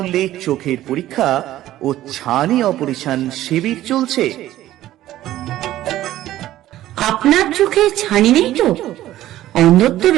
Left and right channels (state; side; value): quieter; left; 14.1 dB